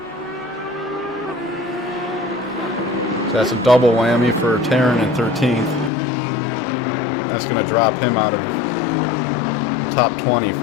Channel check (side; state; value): right; drops out; at 5.9 s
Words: So that's a double whammy for Taryn in 13th. That's going to drop him out of the top 20